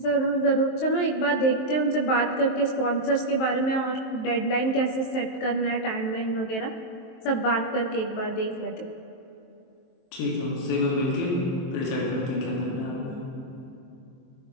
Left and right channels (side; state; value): right; late; 23 ms